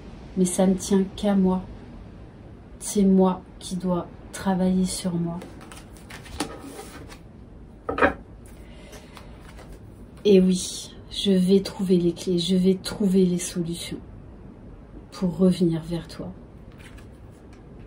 Mais ça ne tient qu'à moi. C'est moi qui dois travailler sur moi. Et oui, je vais trouver les clés, je vais trouver les solutions pour revenir vers toi.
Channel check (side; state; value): both; identical; correlation 1.00